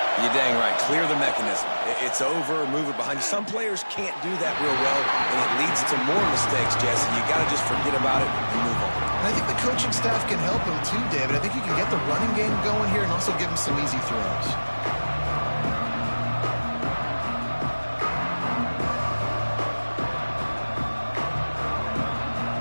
You're dang right. Clear the mechanism. It's over, move it behind you. Some players can't do that real well, and it leads to more mistakes, Jesse. You got to just forget about it and move on. And I think the coaching staff can help him too, David. I think you can get the running game going here and also give him some easy throws.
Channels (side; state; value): both; inverted; correlation -1.00